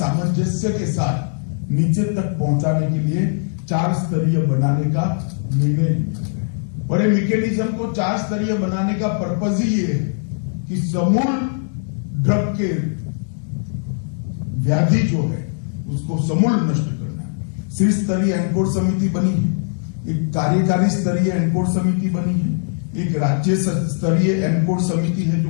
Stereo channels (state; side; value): silent; right; digital silence